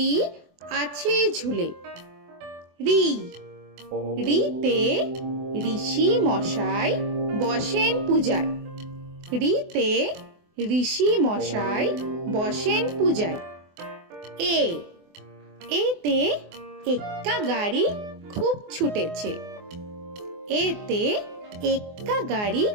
আছে ঝুলে। রি রিতে ঋষি মশাই বসেন পূজায়। রিতে ঋষি মশাই বসেন পূজায়। এ এতে এক্কা গাড়ি খুব ছুটেছে। এতে এক্কা গাড়ি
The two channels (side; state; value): left; late; 24 ms